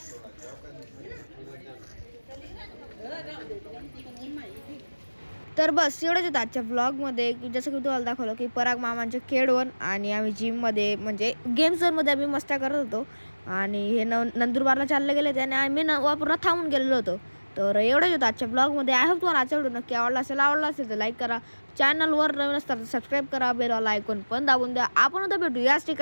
तर बस एवढंच होतं आजच्या व्लॉगमध्ये, की जसं की तुम्हाला दाखवलं की पराग मामांचे केडवन आणि आम्ही जिममध्ये म्हणजे गेम झोनमध्ये आम्ही मस्त्या करत होतो. आणि हे नंदुरबारला चालले गेले त्याने आम्ही वापरून थांबून गेलेलो होतो. तर एवढंच होतं आजच्या ब्लॉगमध्ये. आय होप तुम्हाला आजचा व्हिडिओ नक्की आवडला असेल तर लाईक करा, चॅनलवर नवीन असतात सबस्क्राईब करा, बेलवाला आयकॉन पण दाबून द्या. आपण उद्या भेटू याच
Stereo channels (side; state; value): both; inverted; correlation -1.00